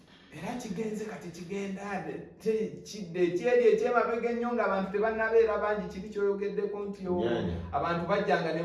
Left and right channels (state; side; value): identical; both; correlation 1.00